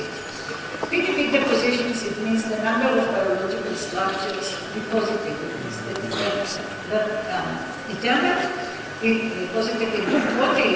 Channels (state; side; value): identical; both; correlation 1.00